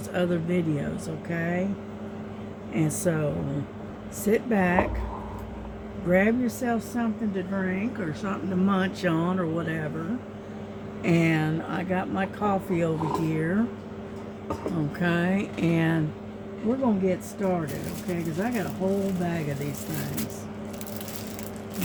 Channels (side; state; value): both; identical; correlation 1.00